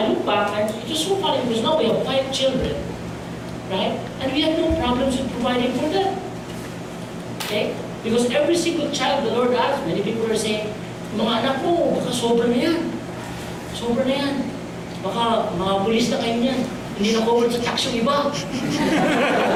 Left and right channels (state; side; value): identical; both; correlation 1.00